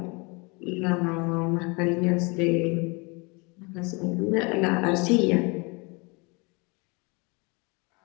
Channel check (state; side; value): quieter; right; 29.3 dB